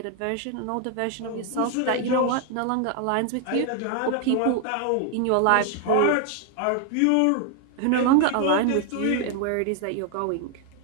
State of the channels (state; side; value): different; both; correlation 0.00